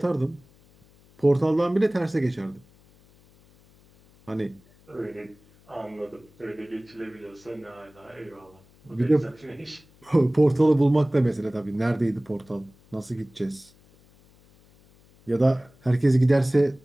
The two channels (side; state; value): left; noise; hum, 29 dB below the sound